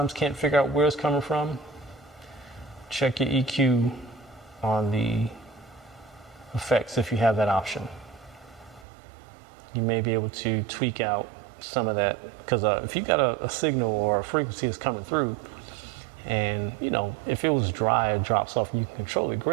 can't figure out where it's coming from, check your EQ on the effects if you have that option. You may be able to tweak out some of that, because if you got a signal or a frequency that's coming through, and you know, if it was dry, it drops off and you can control it,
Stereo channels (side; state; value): left; drops out; at 8.8 s